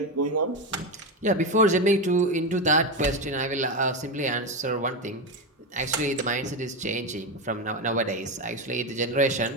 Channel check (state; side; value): normal; both; correlation 0.14